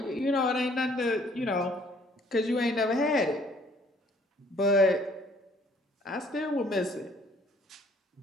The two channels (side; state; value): both; normal; correlation 0.60